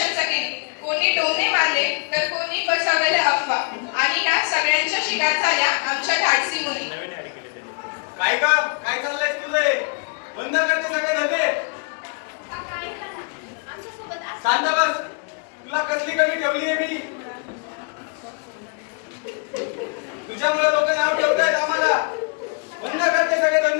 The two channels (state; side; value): quieter; right; 38.7 dB